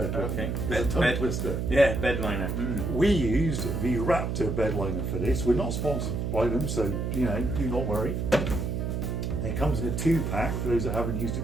liner. Okay. It's a tongue twister. Yeah, bed liner. We used the Raptor bed liner for this. We're not sponsored by them, so do not worry. It comes in a 2-pack for those that haven't used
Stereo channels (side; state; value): right; noise; hum, 1 dB below the sound